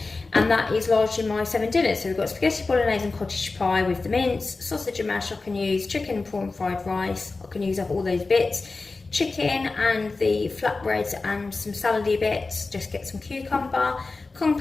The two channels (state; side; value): quieter; right; 3.7 dB